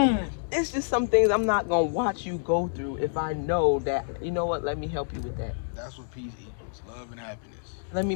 It's just some things I'm not going to watch you go through if I know that, you know what, let me help you with that. That's what peace equals, love and happiness. Let me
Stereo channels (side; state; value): right; silent; digital silence